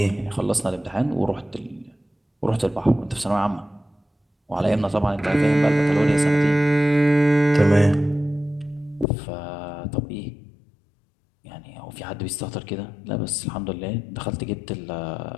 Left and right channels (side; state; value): right; drops out; at 9.1 s